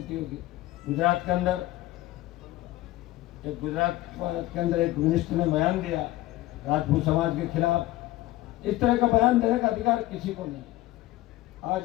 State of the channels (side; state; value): right; quieter; 16.7 dB